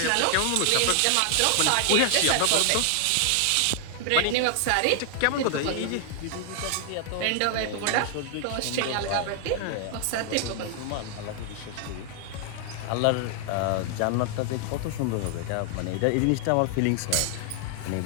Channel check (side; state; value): both; different; correlation 0.00